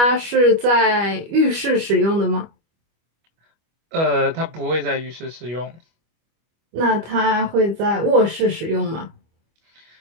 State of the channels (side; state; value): left; late; 25 ms